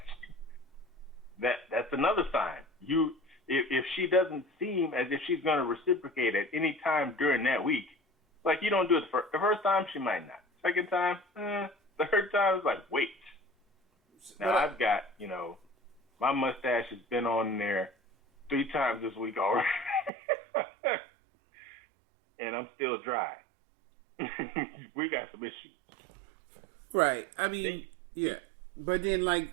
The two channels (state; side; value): drops out; left; at 20.1 s